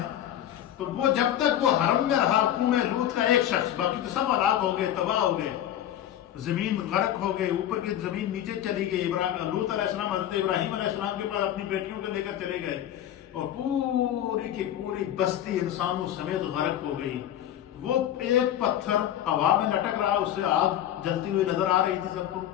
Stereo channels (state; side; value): quieter; right; 11.5 dB